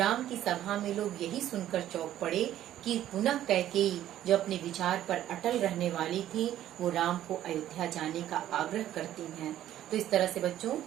की सभा में लोग यही सुनकर चौंक पड़े कि पुनः कैकेयी जो अपने विचार पर अटल रहने वाली थी वो राम को अयोध्या जाने का आग्रह करती हैं। तो इस तरह से बच्चों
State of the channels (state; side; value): quieter; left; 12.3 dB